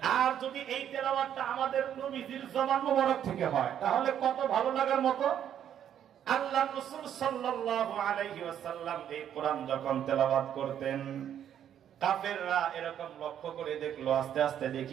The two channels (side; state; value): left; quieter; 9.8 dB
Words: আর যদি এই তেলাওয়াতটা আমাদের নবীজির জবান মোবারক থেকে হয় তাহলে কত ভালো লাগার মতো। আল্লাহর রাসূল সাল্লাল্লাহু আলাইহি ওয়াসাল্লাম এই কোরআন যখন তেলাওয়াত করতেন, কাফেররা এরকম লক্ষ্য করে দেখলো, আস্তে আস্তে